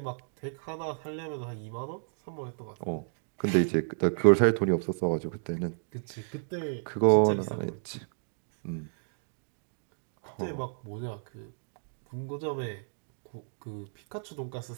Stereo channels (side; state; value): left; silent; digital silence